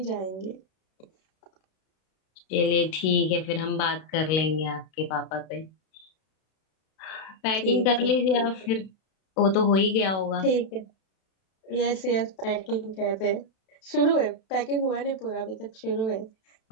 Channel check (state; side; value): late; right; 32 ms